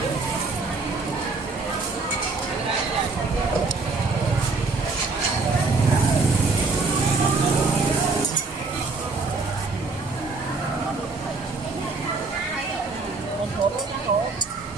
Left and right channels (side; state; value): left; quieter; 4.0 dB